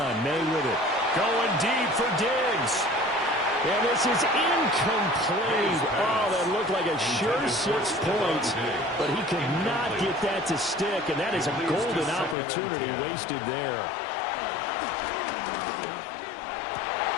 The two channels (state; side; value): drops out; right; at 12.4 s